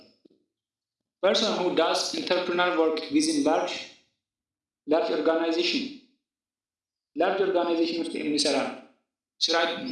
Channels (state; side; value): identical; both; correlation 1.00